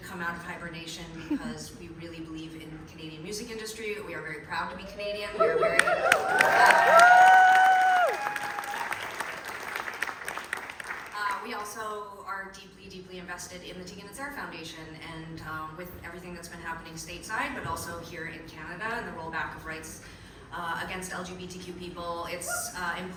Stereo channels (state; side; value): identical; both; correlation 1.00